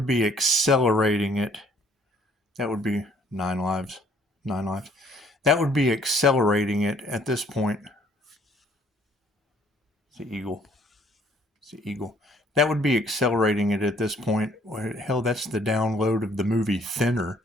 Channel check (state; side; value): normal; both; correlation 0.61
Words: be accelerating it. That would be 9 lives. 9 lives. That would be accelerating it at this point. It's the eagle. It's the eagle. That would be accelerating it at this point. Hell, that's the download of the movie Thinner.